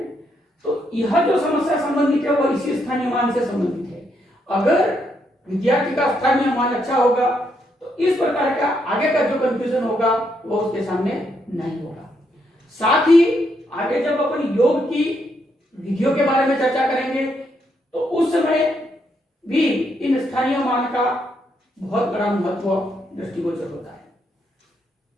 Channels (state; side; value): normal; both; correlation 0.77